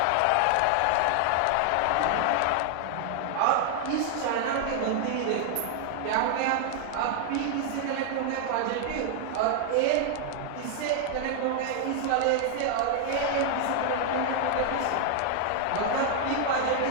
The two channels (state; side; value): different; both; correlation 0.00